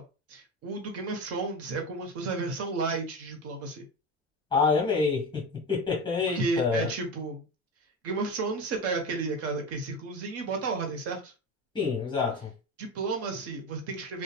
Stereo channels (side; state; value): both; normal; correlation 0.24